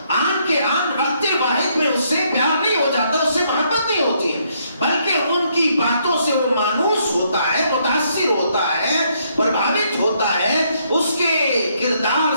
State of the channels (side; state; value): both; inverted; correlation -0.72